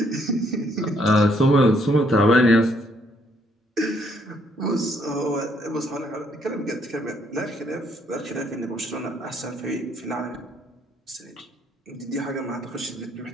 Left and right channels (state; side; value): normal; both; correlation 0.68